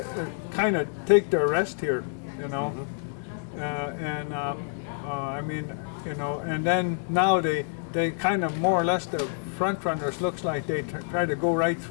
kind of take their rest here, you know. I mean, you know, and then now they kind of more or less, the front runners looks like they try to go right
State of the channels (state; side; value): silent; right; digital silence